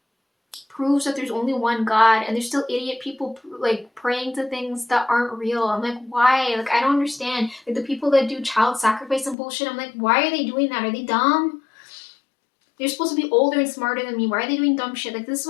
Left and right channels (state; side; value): drops out; right; at 9.3 s